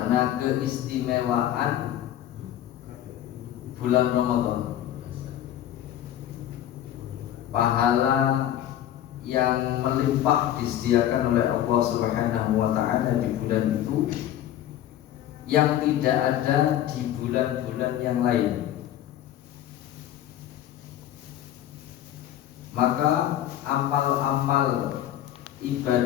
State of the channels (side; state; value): right; quieter; 11.9 dB